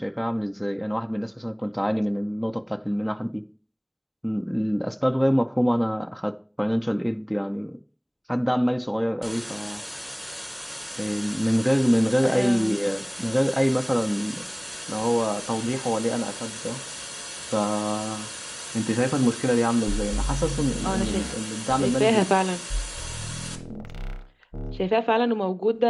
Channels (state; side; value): identical; both; correlation 1.00